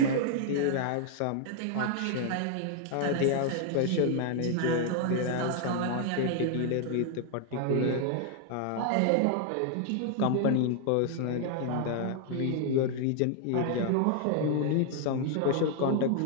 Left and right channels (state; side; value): different; both; correlation 0.00